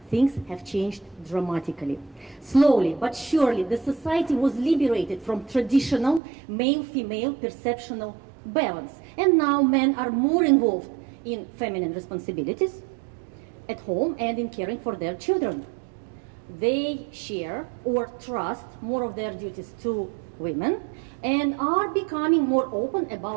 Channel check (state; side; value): drops out; left; at 6.2 s